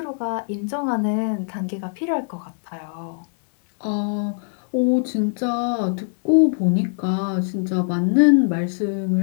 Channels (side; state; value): right; silent; digital silence